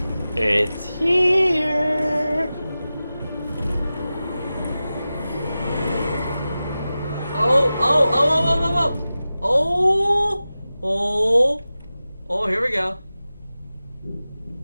it's here. Oh, here we go.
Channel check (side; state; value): both; inverted; correlation -0.95